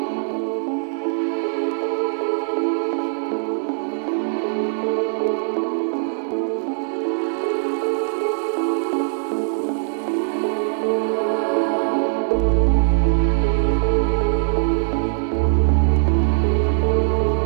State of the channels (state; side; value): silent; left; digital silence